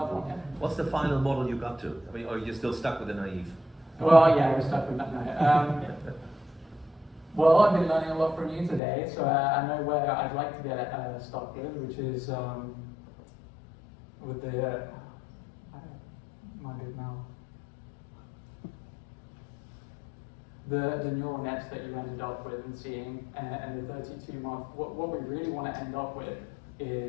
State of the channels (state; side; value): drops out; right; at 8.8 s